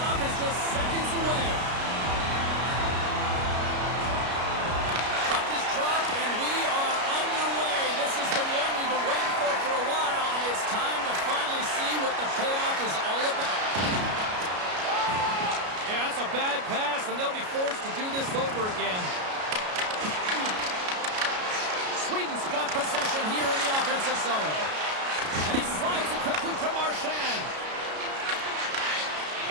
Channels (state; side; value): late; left; 33 ms